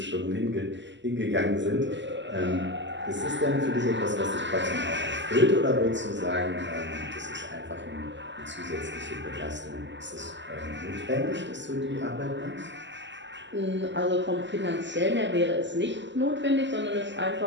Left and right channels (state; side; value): late; left; 0.53 ms